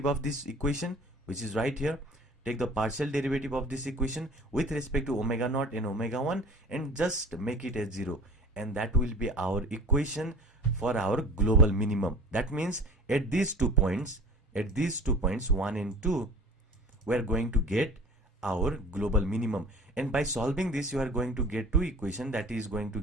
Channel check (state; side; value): normal; both; correlation 0.43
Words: of this equation, which is right here. Take the partial derivative of this equation with respect to omega naught and omega 1 and just make it as 0, and that will be our equation for our global minimum. That means at these 2 points 1 and 2, we are going to get our global minimum. And by solving this, you are going to get 2 equations that is going to